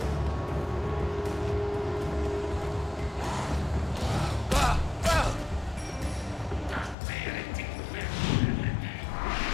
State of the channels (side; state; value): right; drops out; at 7.0 s